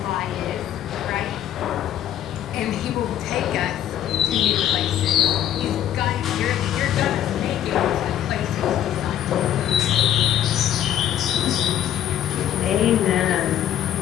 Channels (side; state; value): right; quieter; 11.1 dB